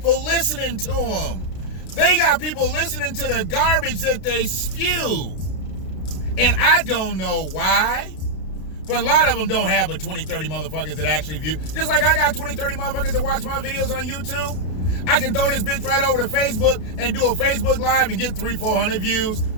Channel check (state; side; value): late; right; 32 ms